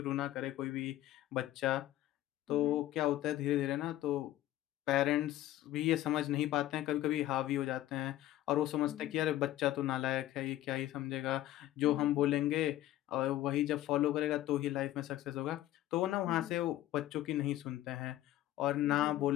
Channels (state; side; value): quieter; right; 14.2 dB